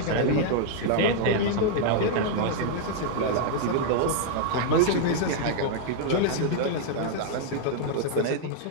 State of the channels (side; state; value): both; different; correlation 0.00